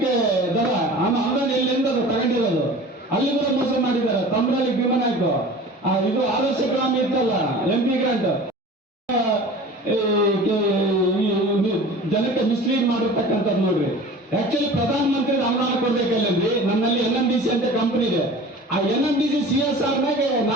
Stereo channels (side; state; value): both; normal; correlation 0.40